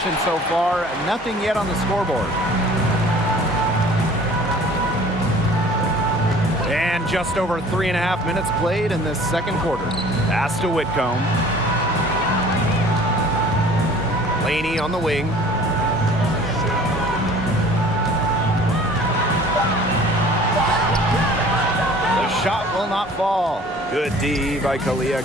so far, nothing yet on the scoreboard. And just over 3.5 minutes played in this second quarter. Pass to Whitcomb. Laney on the wing. The shot will not fall. Good D by Kalia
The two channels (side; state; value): both; normal; correlation 0.49